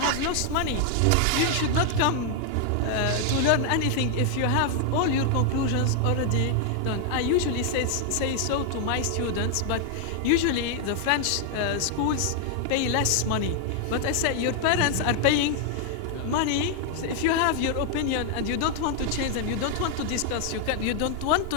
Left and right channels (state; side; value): different; both; correlation 0.00